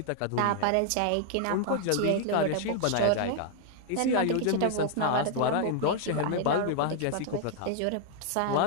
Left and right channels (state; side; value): different; both; correlation 0.00